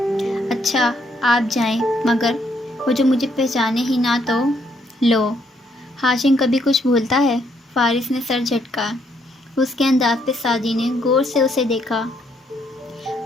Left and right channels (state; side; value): normal; both; correlation 0.72